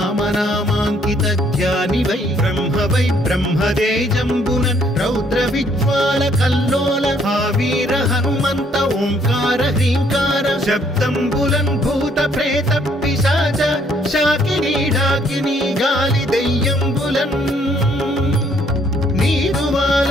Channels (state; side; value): normal; both; correlation 0.66